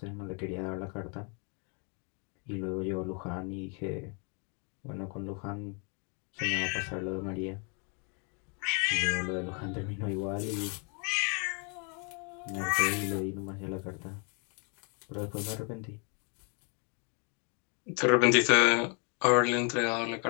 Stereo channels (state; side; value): quieter; right; 36.7 dB